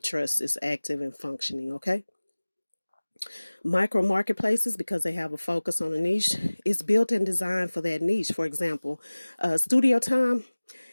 trust is active and functioning, okay? Micro marketplaces, because they have a focus on a niche, is built and designed for that niche. For example, Studio Time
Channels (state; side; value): inverted; both; correlation -1.00